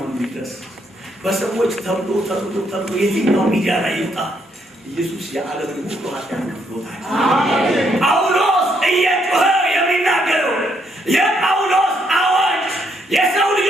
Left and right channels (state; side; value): normal; both; correlation 0.73